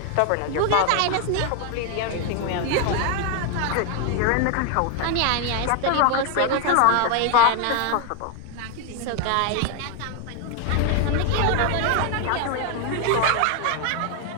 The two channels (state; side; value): different; both; correlation 0.01